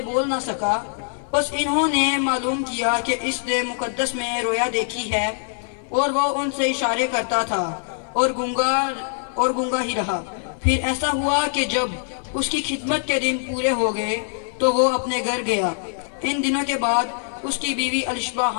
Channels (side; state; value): right; silent; 55 dB below the other